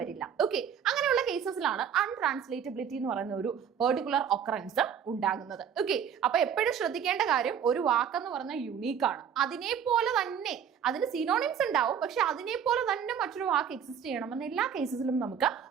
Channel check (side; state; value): left; quieter; 8.0 dB